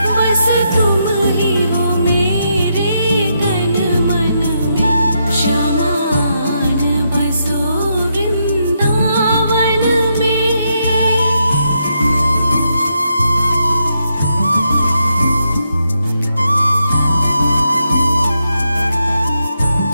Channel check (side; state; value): both; inverted; correlation -0.80